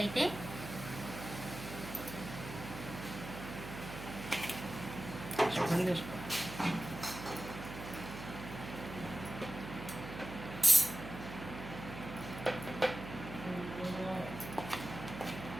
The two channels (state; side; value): noise; right; hum, 10 dB below the sound